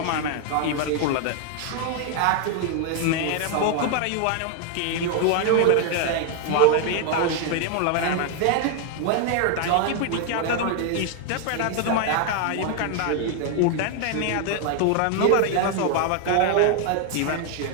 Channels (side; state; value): both; different; correlation 0.00